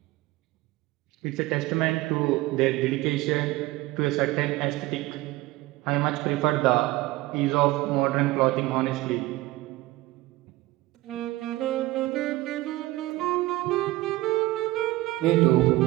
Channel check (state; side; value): quieter; left; 18.6 dB